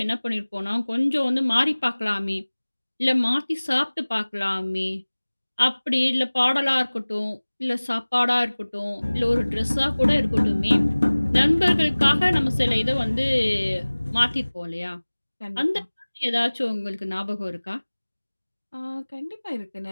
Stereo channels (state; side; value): inverted; both; correlation -1.00